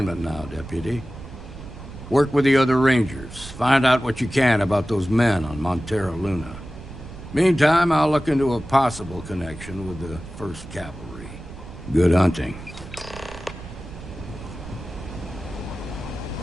now, Deputy. Work with the other Rangers. Find out what you can about those men on Montera Luna. Meantime, I'll look into a possible connection with the 1st Cavalry. Good hunting.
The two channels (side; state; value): right; noise; rumble, 14 dB below the sound